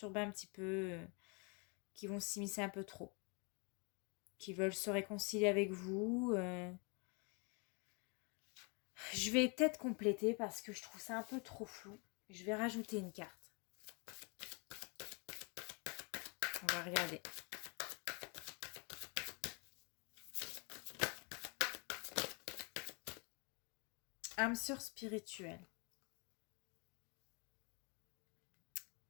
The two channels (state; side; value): quieter; right; 33.6 dB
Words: un petit peu, qui vont s'immiscer un peu trop, qui veulent se réconcilier avec vous. Je vais peut-être compléter parce que je trouve ça un peu trop flou. Je vais rajouter une carte. On va regarder. Âme sœur spirituelle.